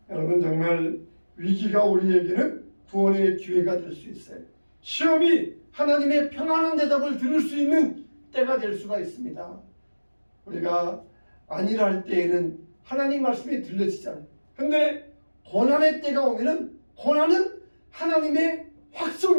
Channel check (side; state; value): both; inverted; correlation -1.00